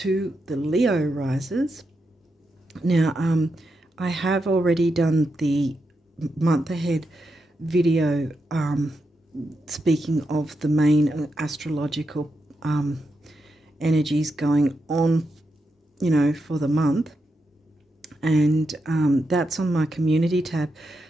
the Leo rises. Now I have already done the month ahead video speaking of the main astrological energies going on, you know, for the month. And that's on my community tab,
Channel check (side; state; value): both; normal; correlation 0.85